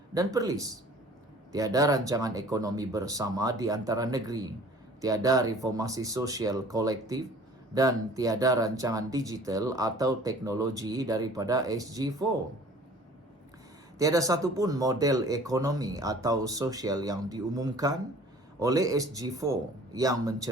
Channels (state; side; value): normal; both; correlation 0.49